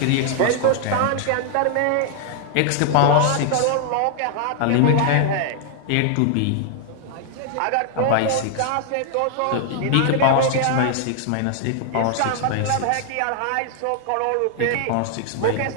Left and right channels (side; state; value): both; different; correlation 0.00